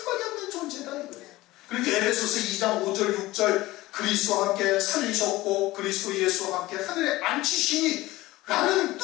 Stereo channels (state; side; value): quieter; right; 18.3 dB